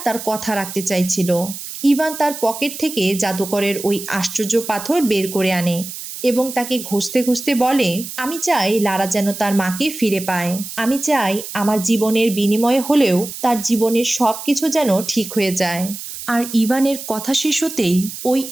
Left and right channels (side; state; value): right; noise; hiss, 10 dB below the sound